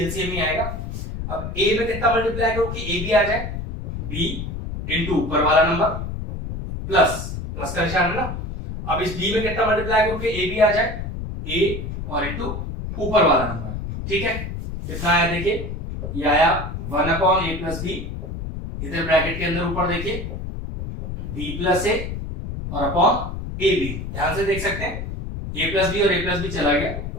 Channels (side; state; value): left; noise; rumble, 6 dB below the sound